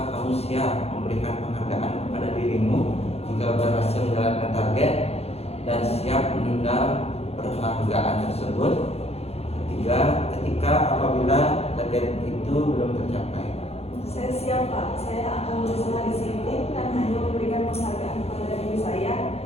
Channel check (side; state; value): right; late; 0.30 ms